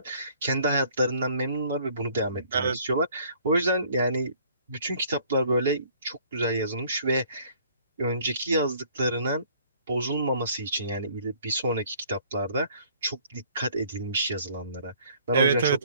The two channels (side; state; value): both; inverted; correlation -0.57